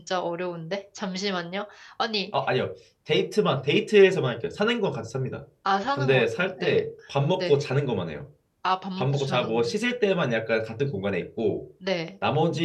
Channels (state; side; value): identical; both; correlation 1.00